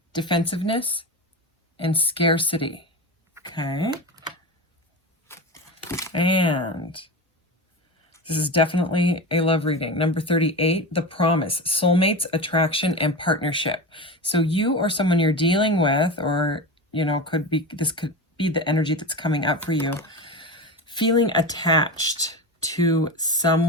defensiveness, and scarcity. Okay. And this is definitely a love reading. Number 38, the promise, soulmates, attraction, and partnership. So you or someone you're dealing with, or, you know, this could be the energy that's coming up for you, feeling attached to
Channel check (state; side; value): normal; both; correlation 0.24